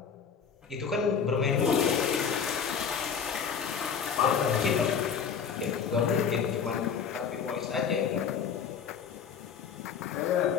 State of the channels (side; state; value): right; quieter; 6.9 dB